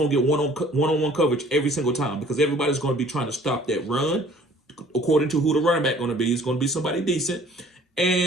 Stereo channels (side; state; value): both; normal; correlation 0.54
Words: to get one-on-one coverage every single time because everybody's going to be trying to stop that run. According to who the running back going to be, it's going to be somebody decent.